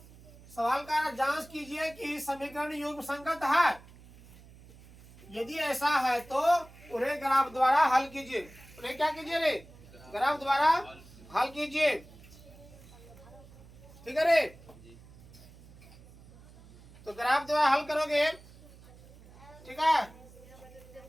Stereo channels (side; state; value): right; noise; hum, 21 dB below the sound